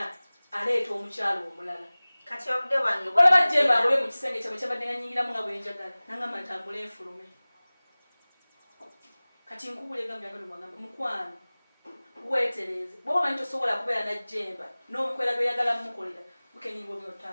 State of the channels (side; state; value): both; inverted; correlation -0.99